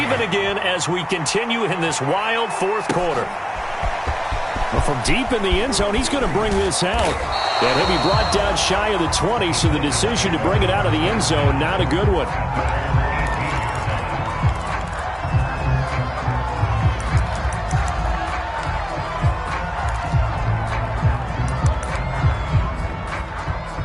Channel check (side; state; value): both; identical; correlation 1.00